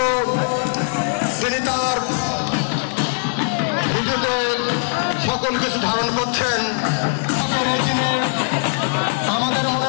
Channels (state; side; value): silent; right; digital silence